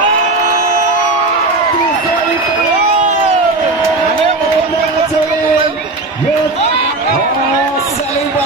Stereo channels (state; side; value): quieter; left; 3.1 dB